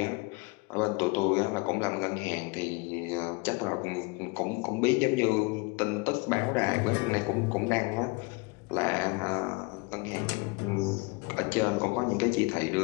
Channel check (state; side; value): quieter; right; 27.5 dB